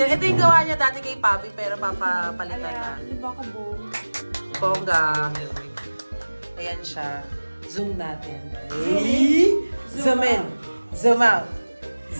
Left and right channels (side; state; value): both; inverted; correlation -1.00